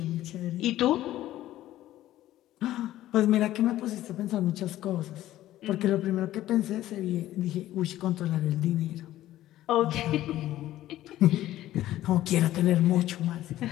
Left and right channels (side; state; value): right; quieter; 14.2 dB